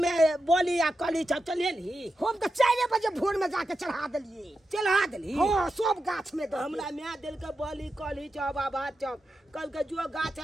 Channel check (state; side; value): normal; both; correlation 0.89